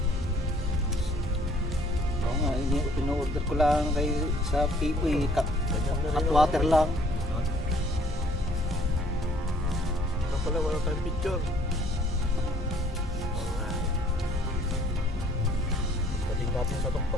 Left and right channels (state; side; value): normal; both; correlation 0.59